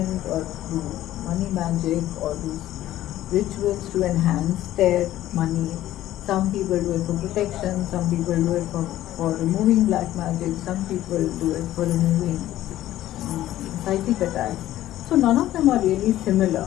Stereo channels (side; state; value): right; quieter; 13.9 dB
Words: or do money magic or do rituals to enhance their money. Some people do it for protection, some people do it for removing black magic, some people do it for removing psychic attacks. So none of them are really similar.